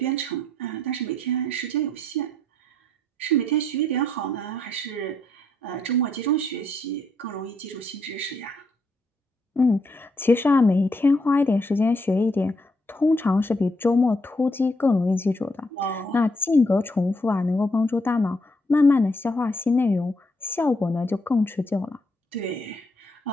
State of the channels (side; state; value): both; normal; correlation 0.74